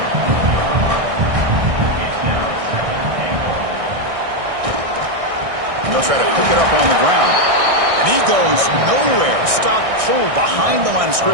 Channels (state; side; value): late; left; 1.6 ms